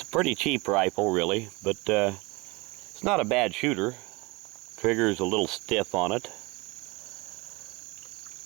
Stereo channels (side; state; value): left; quieter; 25.5 dB